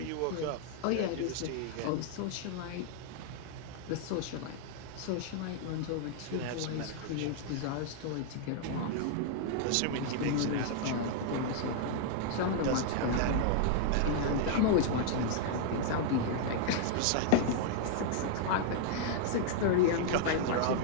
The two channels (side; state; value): both; different; correlation -0.01